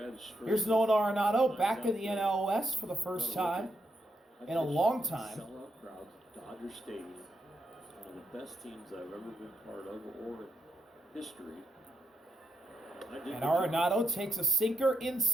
spring. Here's Nolan Arenado back in the NL West for the first time in a long time. Sellout crowd, Dodger Stadium, one of the best teams I've ever been part of or history. And Arenado takes a sinker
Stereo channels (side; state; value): both; normal; correlation 0.81